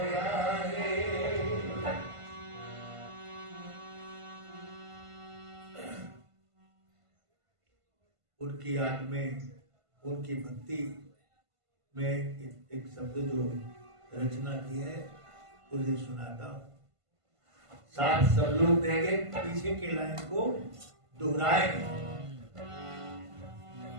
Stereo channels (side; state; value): left; late; 1.5 ms